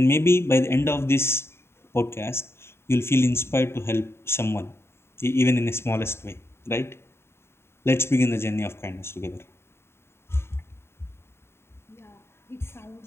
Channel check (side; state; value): right; late; 0.12 ms